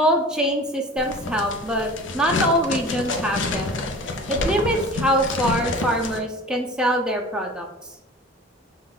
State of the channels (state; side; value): normal; both; correlation 0.40